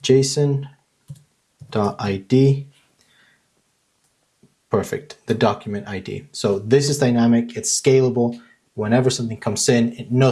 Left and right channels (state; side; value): identical; both; correlation 1.00